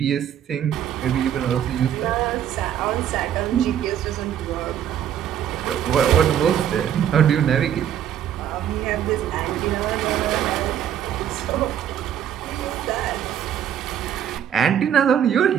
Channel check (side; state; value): left; quieter; 9.8 dB